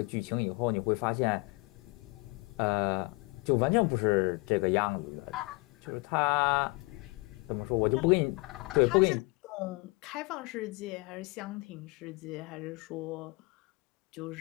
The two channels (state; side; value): quieter; right; 26.1 dB